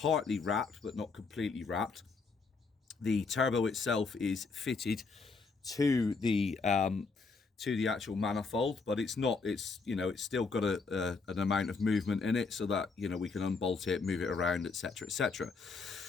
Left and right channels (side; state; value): right; quieter; 4.4 dB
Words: wrapped, but not completely wrapped. The turbo itself is fitted to the actual manifold, but it's not, it's still got an amount of movement in it, so that we can unbolt it, move it around, etc, etc.